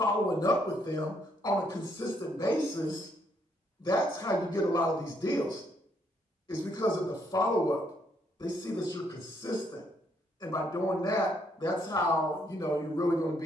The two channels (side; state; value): both; normal; correlation 0.72